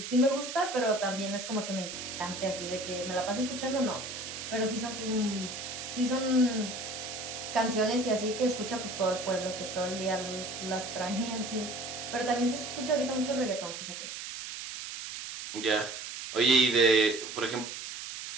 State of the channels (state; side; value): noise; right; hiss, 8 dB below the sound